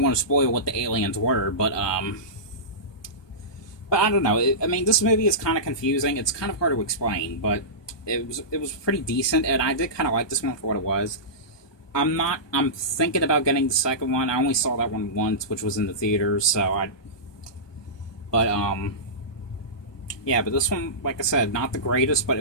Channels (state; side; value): late; right; 1.2 ms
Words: want to spoil what the aliens were, but I don't know. I mean, this movie is kind of confusing. It's kind of hard to explain, but it was pretty decent, and I did kind of like this one for what it was. I'm thinking about getting the second one. I only saw that one once, which was in the theaters, yeah, but this one, like I said, not the greatest, but